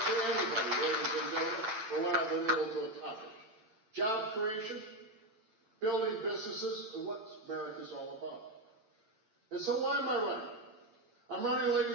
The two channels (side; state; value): left; late; 8.9 ms